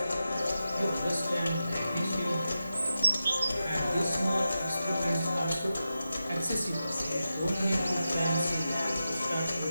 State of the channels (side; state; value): both; inverted; correlation -0.90